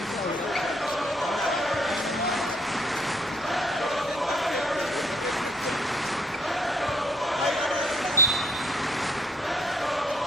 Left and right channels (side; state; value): both; normal; correlation 0.67